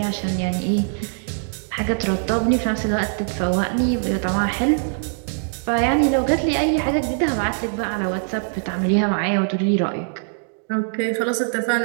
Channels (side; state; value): left; silent; digital silence